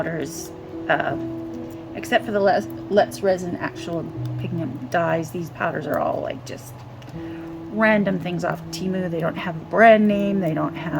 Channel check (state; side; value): identical; both; correlation 1.00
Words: except for the Let's Resin actual pigment dyes, these powders are all like just random things off Temu. They don't have a brand name. They don't